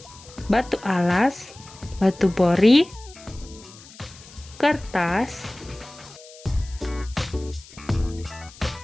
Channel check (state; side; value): noise; left; hiss, 20 dB below the sound